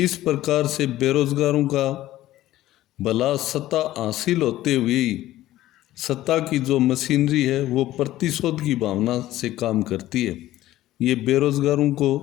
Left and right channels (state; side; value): quieter; right; 14.9 dB